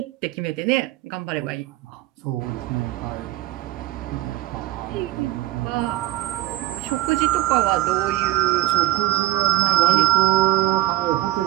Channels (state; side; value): quieter; left; 16.1 dB